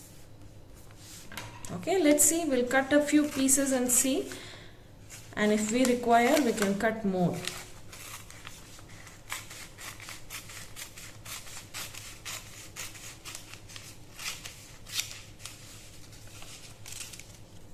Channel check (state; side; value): identical; both; correlation 1.00